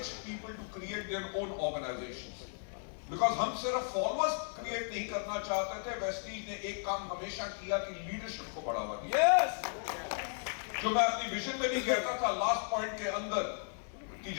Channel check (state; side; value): silent; right; 54 dB below the other